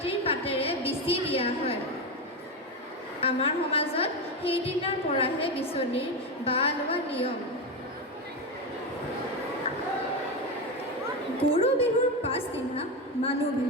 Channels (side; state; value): both; normal; correlation 0.14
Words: পাতেৰে বিচি দিয়া হয়। আমাৰ সমাজত সেইদিনাৰ পৰাহে বিচনীৰ বাহ লোৱা নিয়ম। গৰু বিহুৰ পাছদিনা মানুহ